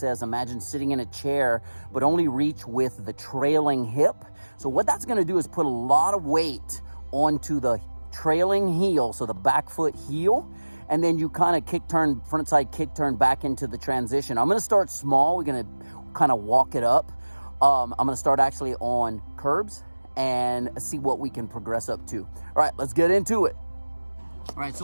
imagine sitting in a chair, but only reach with the trailing hip. So what that's going to do is put a lot of weight onto the trailing heel, so the back foot heel. And then you kind of frontside kick turn back into the transition. I'm gonna start small. We're gonna kind of walk it up. I'm gonna start actually on curbs and see what we can progress up to. All right, let's get into it. All right,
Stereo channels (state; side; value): inverted; both; correlation -1.00